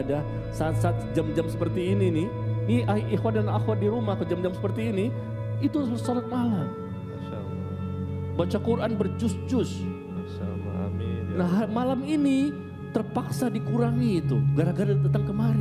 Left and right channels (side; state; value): both; identical; correlation 1.00